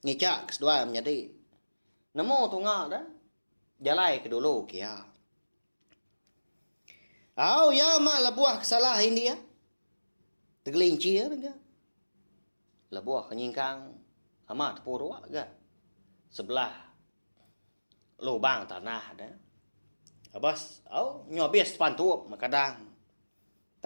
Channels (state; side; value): inverted; both; correlation -1.00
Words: kedua menjadi. Nemu tunggal dah. Jalai ke dulu kia. Au ya mak lebuah kesalahan dia. Tergelincir ke. Lebuah kenyingkang. Amat purwa ke. Sebelah. Lubang tanah dah. Abas. Au nyobis pantup makadang.